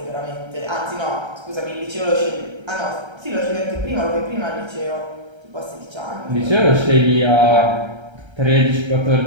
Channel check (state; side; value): late; left; 1.3 ms